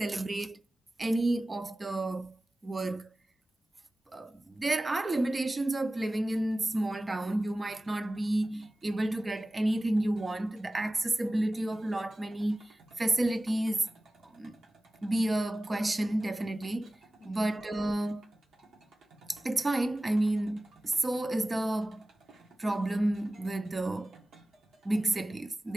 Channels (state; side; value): normal; both; correlation 0.97